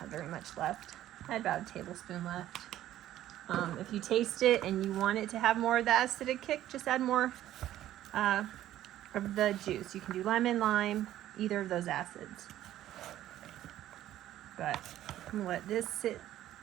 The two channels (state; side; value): quieter; left; 13.0 dB